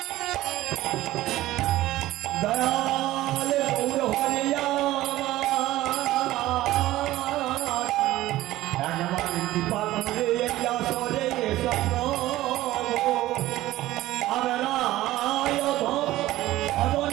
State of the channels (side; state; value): left; quieter; 16.0 dB